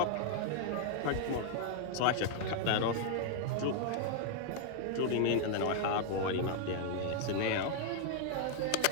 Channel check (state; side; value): different; both; correlation 0.00